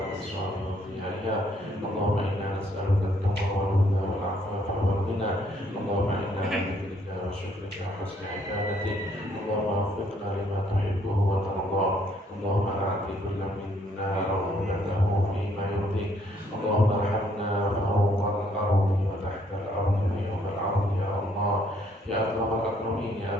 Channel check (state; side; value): normal; both; correlation 0.67